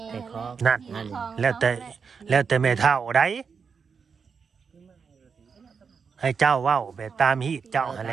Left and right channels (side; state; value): left; quieter; 5.8 dB